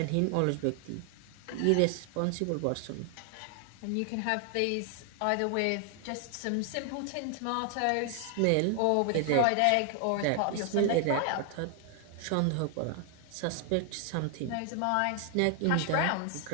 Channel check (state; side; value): different; both; correlation 0.00